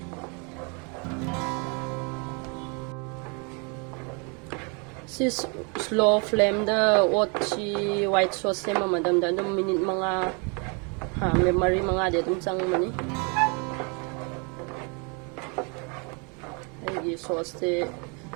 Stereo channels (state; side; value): quieter; left; 34.0 dB